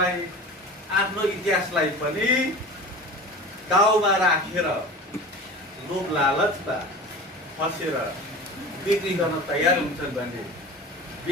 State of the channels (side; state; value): both; normal; correlation 0.35